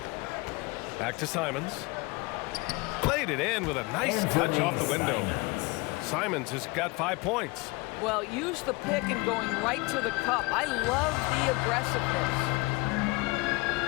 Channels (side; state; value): right; quieter; 25.3 dB